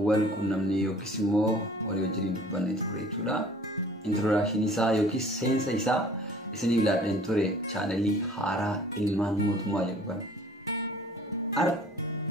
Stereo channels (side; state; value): both; normal; correlation 0.50